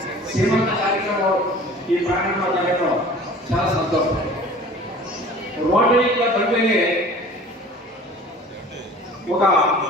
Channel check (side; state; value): both; normal; correlation 0.44